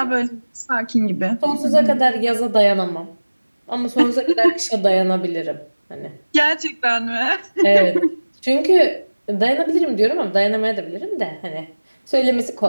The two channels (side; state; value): both; inverted; correlation -1.00